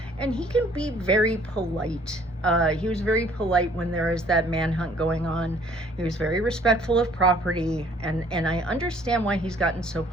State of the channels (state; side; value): normal; both; correlation 0.58